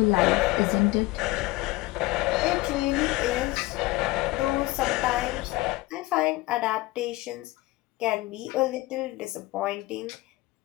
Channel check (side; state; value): right; quieter; 20.3 dB